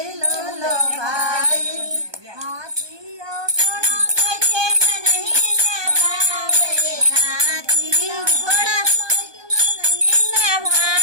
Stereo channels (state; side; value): late; left; 1.2 ms